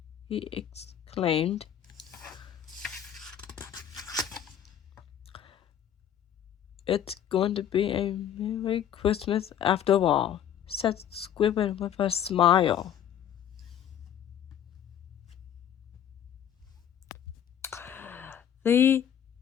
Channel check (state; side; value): quieter; right; 9.8 dB